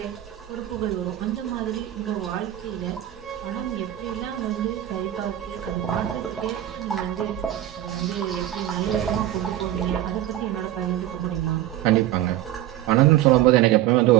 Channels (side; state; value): left; quieter; 13.1 dB